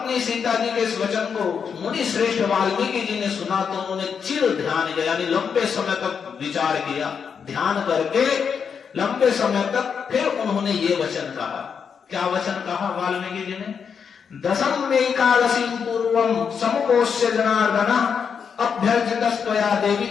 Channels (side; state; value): right; quieter; 6.6 dB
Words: सीता जी के इस वचन को मुनि श्रेष्ठ वाल्मीकि जी ने सुना तो उन्होंने चिर ध्यान किया, यानी लंबे समय तक विचार किया, ध्यान करके लंबे समय तक फिर उन्होंने ये वचन कहा। क्या वचन कहा वाल्मीकि जी ने? 10वीं एकादशी पूर्वम समुपोष्य जनार्दन अभ्यर्थितस्त्वया देवी